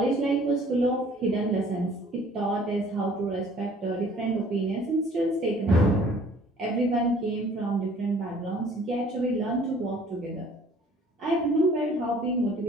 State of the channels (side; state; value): both; normal; correlation 0.54